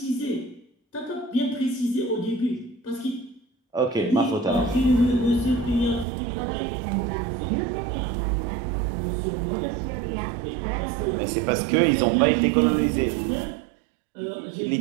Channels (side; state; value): left; drops out; at 6.1 s